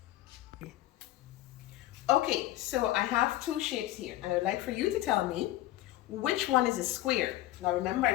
Okay, so I have 2 shapes here, and I would like for you to tell me which one is a square. Now remember,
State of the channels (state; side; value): quieter; right; 15.4 dB